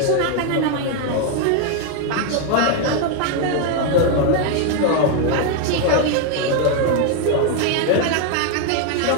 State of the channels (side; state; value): both; different; correlation 0.01